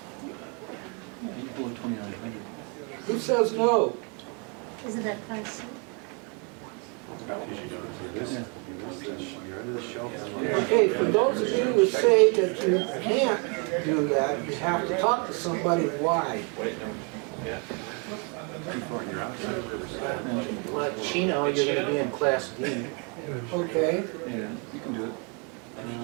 Who says no? Isn't that Class C? Okay, for those of you who say that you can't do that, you have to talk to somebody why. Well, Chino, you're going to be in Class D. Okay, Yeah, you can do it.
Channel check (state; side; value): quieter; left; 35.0 dB